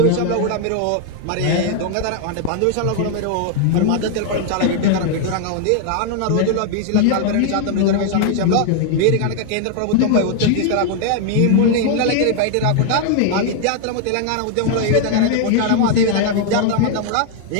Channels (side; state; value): both; different; correlation 0.00